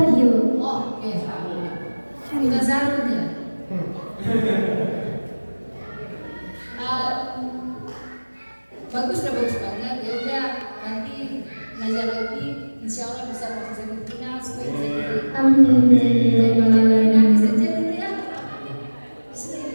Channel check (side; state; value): both; inverted; correlation -1.00